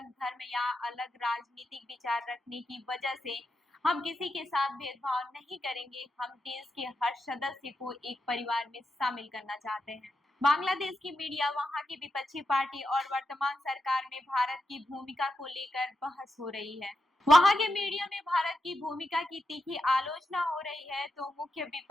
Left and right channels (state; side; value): normal; both; correlation 0.86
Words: धर्म या अलग राजनीतिक विचार रखने की वजह से हम किसी के साथ भेदभाव नहीं करेंगे। हम देश के हर सदस्य को एक परिवार में शामिल करना चाहते हैं। बांग्लादेश की मीडिया वहां की विपक्षी पार्टी और वर्तमान सरकार में भारत की भूमिका को लेकर बहस हो रही है। वहां के मीडिया में भारत की भूमिका की तीखी आलोचना हो रही है, तो मुख्य